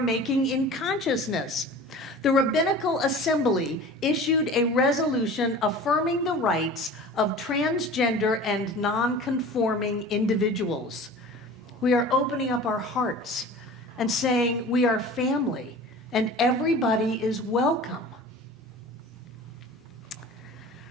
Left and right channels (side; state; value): both; normal; correlation 0.39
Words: in consciousness. The Rabbinical Assembly issued a resolution affirming the rights of transgender and non-conforming individuals. We are opening up our hearts and saying we are family and everybody is welcome.